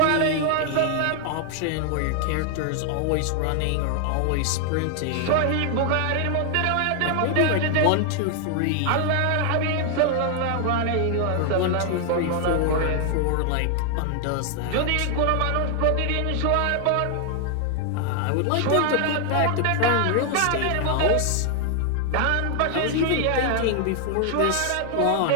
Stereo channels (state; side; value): different; both; correlation 0.00